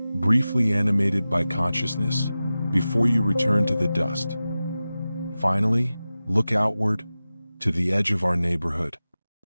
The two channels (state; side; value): inverted; both; correlation -0.95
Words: briefly animated by consciousness before you return to the dust. Finally, look outward to the edge of our neighborhood.